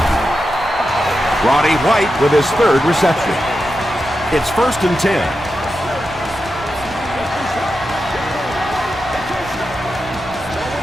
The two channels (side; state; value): right; noise; rumble, 17 dB below the sound